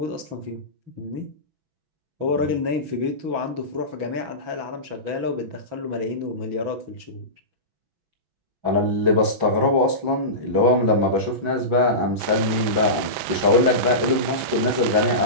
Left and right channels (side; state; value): left; late; 6.1 ms